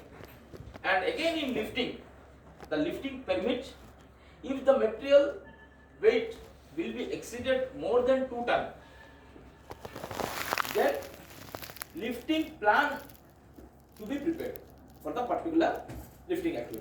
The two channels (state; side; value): identical; both; correlation 1.00